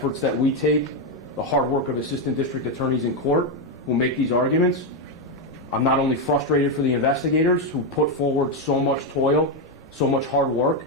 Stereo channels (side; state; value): both; normal; correlation 0.05